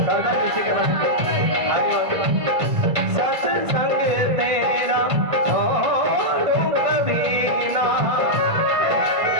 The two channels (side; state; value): left; late; 1.5 ms